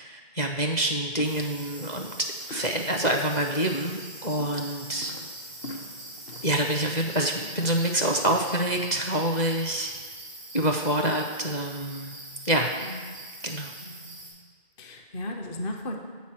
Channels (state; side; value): late; right; 2.0 ms